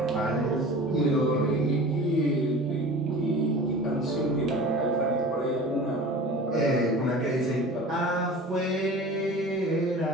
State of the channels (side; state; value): both; normal; correlation 0.39